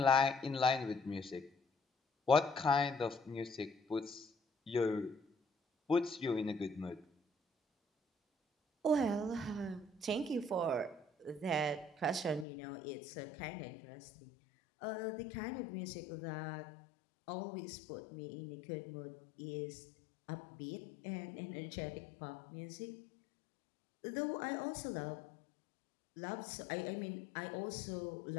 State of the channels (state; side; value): drops out; right; at 12.5 s